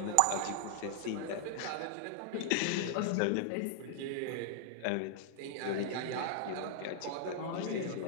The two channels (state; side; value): different; both; correlation -0.01